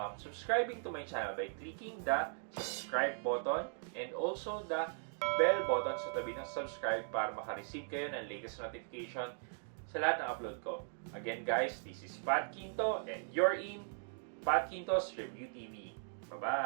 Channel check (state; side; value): silent; left; digital silence